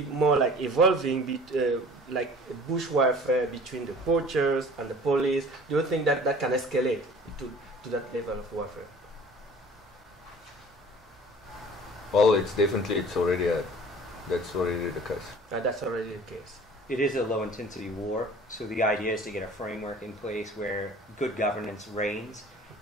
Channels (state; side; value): normal; both; correlation 0.47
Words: more like evolving, like bush warfare between the poachers and the police? Do you think that that can escalate to that level of warfare? Well, that's already the case. That's already the case. It is a low-intensity war, so the idea is to get a framework in place where good governance reigns